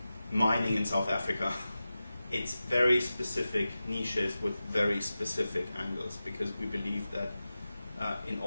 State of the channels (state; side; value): inverted; both; correlation -0.94